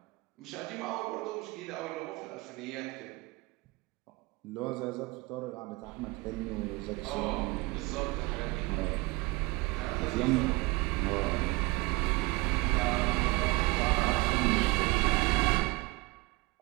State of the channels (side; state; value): left; quieter; 23.4 dB